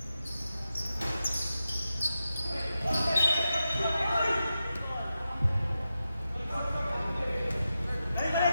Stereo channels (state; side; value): inverted; both; correlation -0.90